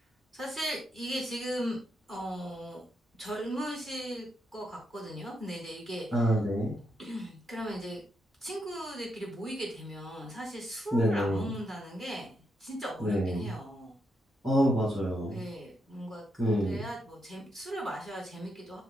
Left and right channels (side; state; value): both; normal; correlation 0.81